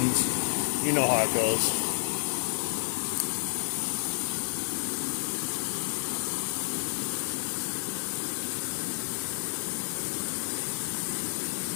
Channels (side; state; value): right; silent; 58 dB below the other